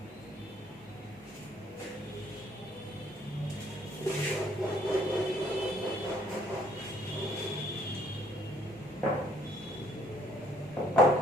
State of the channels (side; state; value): both; normal; correlation 0.63